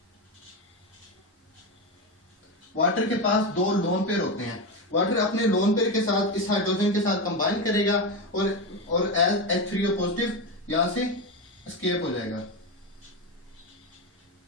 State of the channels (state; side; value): normal; both; correlation 0.15